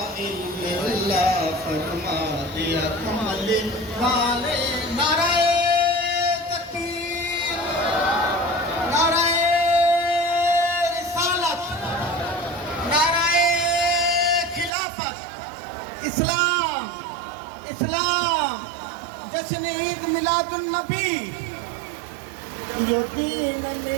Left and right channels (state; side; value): drops out; left; at 14.7 s